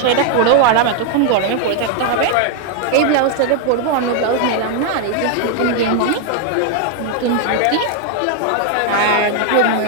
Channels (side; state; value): both; different; correlation 0.00